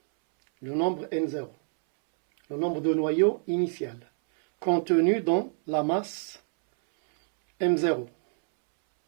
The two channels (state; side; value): silent; left; 61 dB below the other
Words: le nombre N0, le nombre de noyaux initial, contenu dans la masse M0.